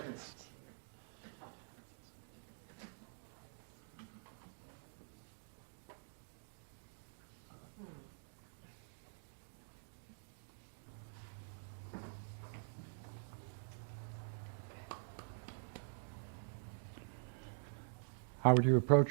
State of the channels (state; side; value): silent; left; digital silence